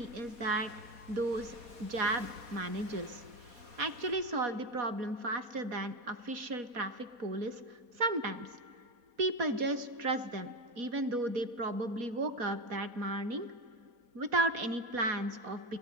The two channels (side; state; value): left; late; 4.2 ms